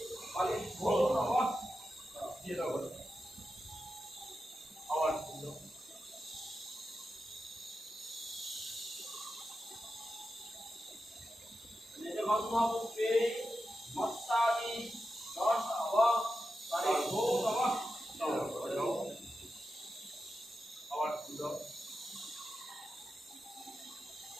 ফলেভ্যো নমঃ। দিয়ে দাও আবার ফুল দাও। গন্ধপুষ্পে মত্তাদি দশ ফলেভ্যো নমঃ। আবার ফুল দাও।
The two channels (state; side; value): normal; both; correlation 0.90